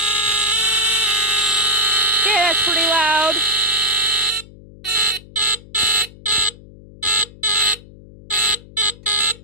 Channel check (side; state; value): left; noise; hum, 21 dB below the sound